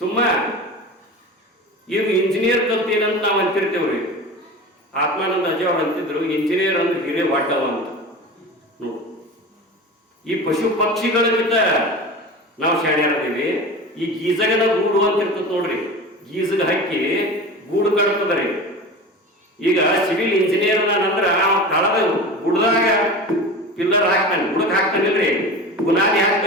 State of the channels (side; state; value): both; normal; correlation 0.32